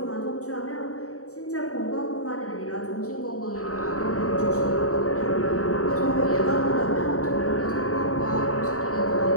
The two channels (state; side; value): late; right; 0.65 ms